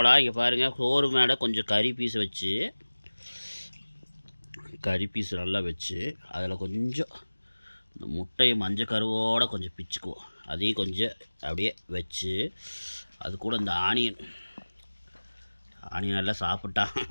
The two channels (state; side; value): inverted; both; correlation -1.00